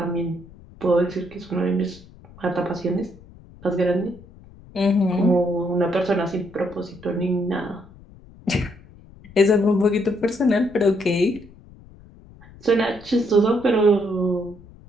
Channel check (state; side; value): noise; left; rumble, 22 dB below the sound